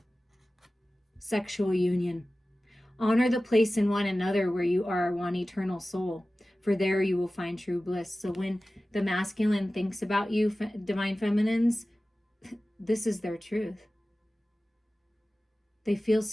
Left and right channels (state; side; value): normal; both; correlation 0.96